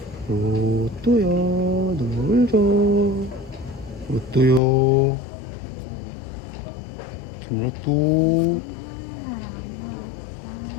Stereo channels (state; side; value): drops out; right; at 4.6 s